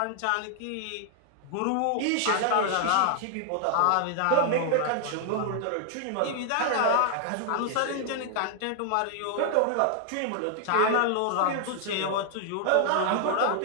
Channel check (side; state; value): both; different; correlation 0.00